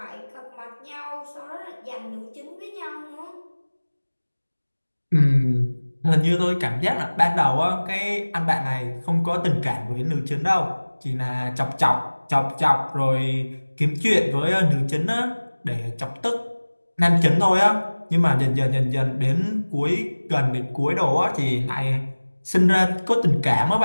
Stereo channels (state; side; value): inverted; both; correlation -1.00